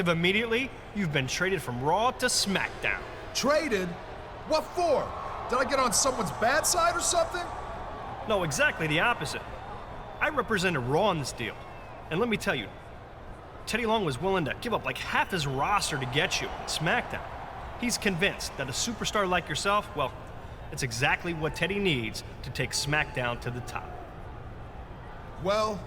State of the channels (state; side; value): identical; both; correlation 1.00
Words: immediately, you've been traded from Raw to SmackDown. Traded? What for? Did I get on someone's bad side or something? No, exactly the opposite. I represented Raw in this deal. And let me tell you, Teddy Long was willing to give up like half his roster to get you at SmackDown. He's convinced that a superstar like yourself, well, it's exactly what Teddy needs to take SmackDown to the top. Well,